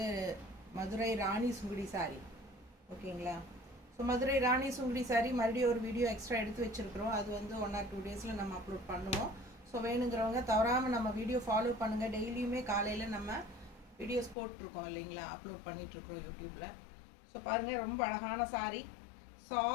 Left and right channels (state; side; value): drops out; right; at 14.4 s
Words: மதுரை ராணி சுங்குடி சாரீ. ஓகேங்களா? ஸோ மதுரை ராணி சுங்குடி சாரீ மறுபடியும் ஒரு வீடியோ எக்ஸ்ட்ரா எடுத்து வச்சுருக்குறோம். அது வந்து 1 or 2 டேஸில் நம்ம அப்லோட் பண்ணுவோம். ஸோ வேணுங்கிறவங்க தவறாமல் நம்ம வீடியோ ஃபாலோ பண்ணுங்கள். டெய்லியுமே காலையில் நம்ம வீடியோஸ் போட்டிருக்கோம் இல்லைங்களா, அப்லோட் பண்ணிகிட்ருக்குறோம் யூடியூப்பில். ஸோ பாருங்கள், ரொம்ப அழகான சாரீ,